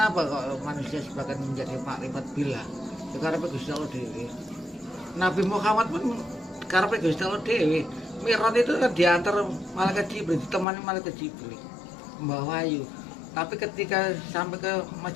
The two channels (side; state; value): right; drops out; at 10.7 s